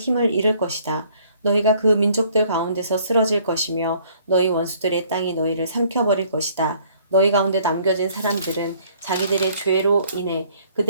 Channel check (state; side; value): inverted; both; correlation -0.60